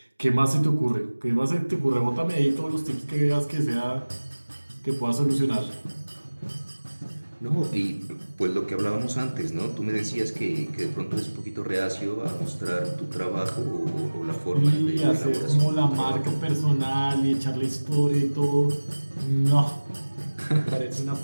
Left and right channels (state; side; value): inverted; both; correlation -1.00